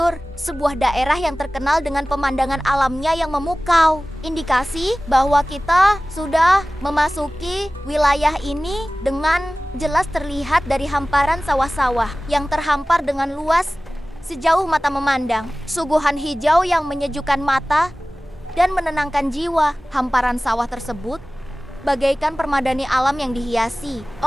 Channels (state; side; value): normal; both; correlation 0.98